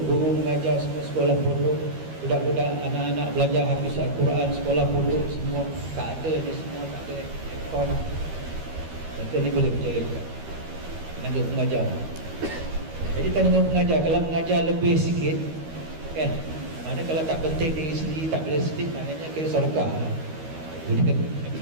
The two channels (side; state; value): left; late; 13 ms